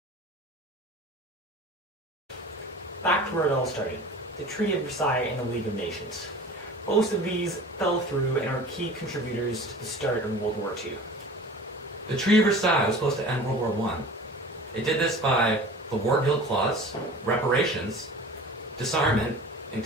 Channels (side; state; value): both; normal; correlation 0.40